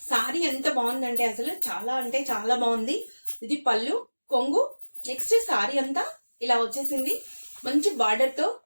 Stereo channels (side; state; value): both; inverted; correlation -1.00